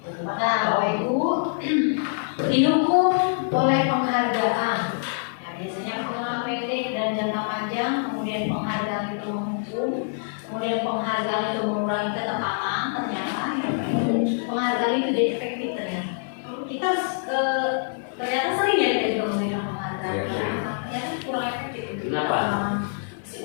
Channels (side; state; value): right; silent; digital silence